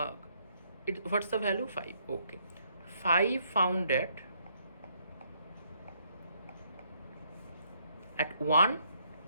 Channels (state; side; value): inverted; both; correlation -0.71